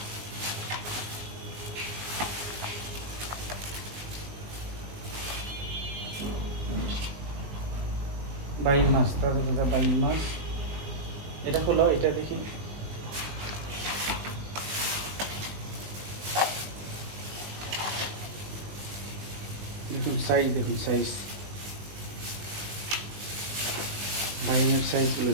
বাইল মাছ, তাজা তাজা বাইল মাছ। এটা খোলো, এটা দেখি। দেখুন সাইজ, দেখুন সাইজ, বাইলের সাইজগুলো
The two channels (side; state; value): left; late; 20 ms